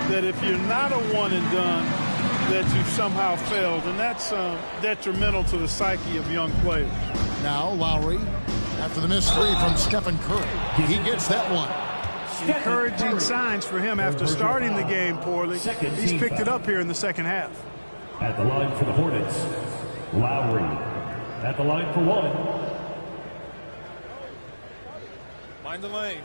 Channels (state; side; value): inverted; both; correlation -1.00